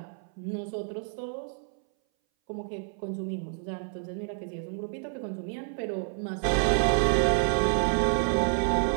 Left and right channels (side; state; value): left; silent; 59 dB below the other